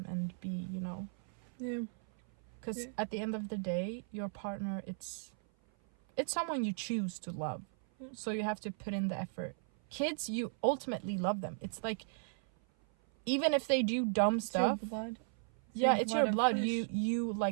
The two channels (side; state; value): left; silent; 54 dB below the other